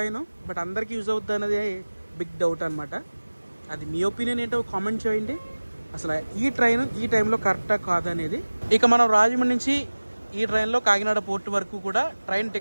బట్ అందరికీ యూజ్ అవుతుంది అనేది బిగ్ డౌట్ అనమాట. అది మీ ఒపీనియన్ ఏంటో కామెంట్ చేయండి. అసలు ఈ ట్రైన్ ఈ టైంలో కరెక్టా కాదనేది. ఇక మనం రాజమండ్రి నుంచి ఈ ట్రైన్లో కాకినాడ పోర్ట్ వరకు కూడా ట్రైన్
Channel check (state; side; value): inverted; both; correlation -1.00